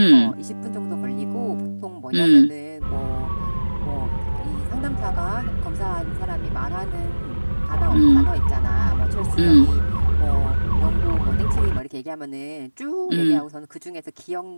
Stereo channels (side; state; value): both; inverted; correlation -1.00